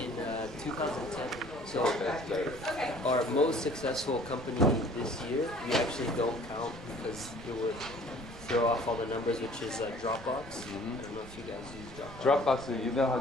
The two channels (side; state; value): right; noise; rumble, 15 dB below the sound